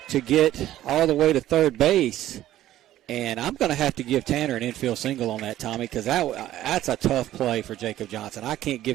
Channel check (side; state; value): left; quieter; 13.5 dB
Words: to get all the way to third base. And I'm going to have to give Tanner an infield single on that, Tommy, because that's a tough play for Jacob Johnson. I can't